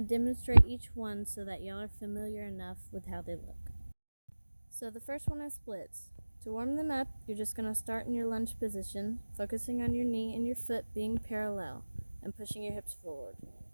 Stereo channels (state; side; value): inverted; both; correlation -1.00